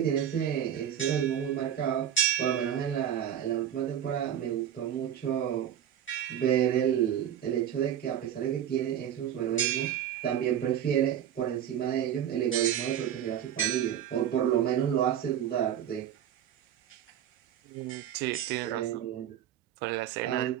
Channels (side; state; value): left; quieter; 10.1 dB